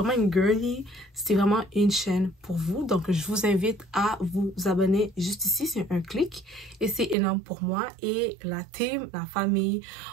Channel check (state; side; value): drops out; left; at 7.2 s